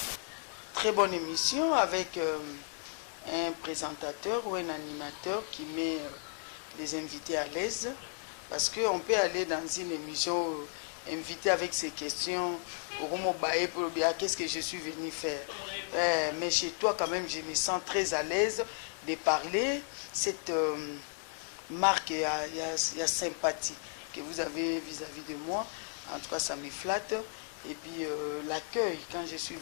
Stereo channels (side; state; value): right; silent; 55 dB below the other